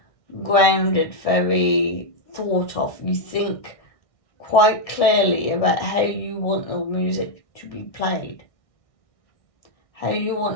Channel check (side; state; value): right; late; 1.7 ms